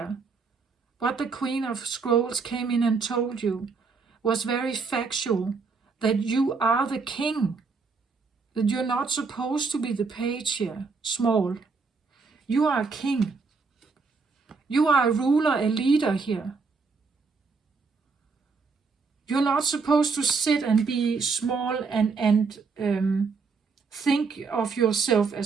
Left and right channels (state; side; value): quieter; left; 4.7 dB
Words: what the Queen of Scrolls came in and told you, was very factual, that you are the king, that you're not supposed to be the page here, small. You are a king. You are a ruler, a leader here. You're not supposed to sit and be small and think of yourself